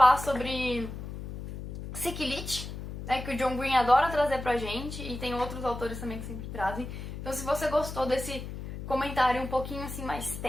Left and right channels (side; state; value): left; noise; hum, 9 dB below the sound